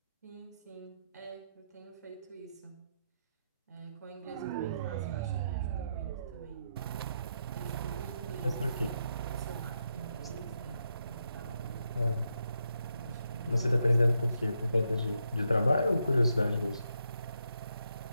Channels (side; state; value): both; inverted; correlation -0.82